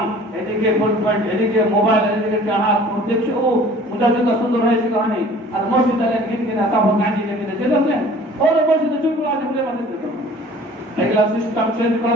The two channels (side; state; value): both; normal; correlation 0.49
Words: এদিকে ফুল পয়েন্ট, এদিকে মোবাইল, এদিকে চাহাত দেখছে, ও মুজাহিদটা সুন্দর হয়েছে কহানি। আর মসজিদে কিনা তখন গাঁজি লেগে চলে আসলেন, ওর মসজিদে চুপগুলো আছে বলে মাঝে এগুলা সিস্টেম চেঞ্জ